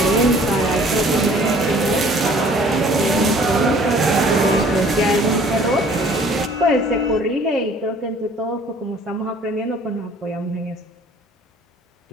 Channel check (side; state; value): both; normal; correlation 0.54